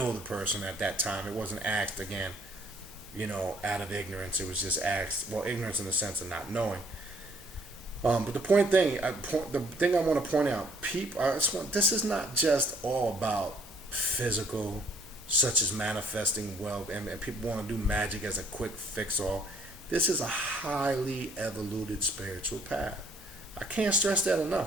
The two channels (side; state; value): both; normal; correlation 0.62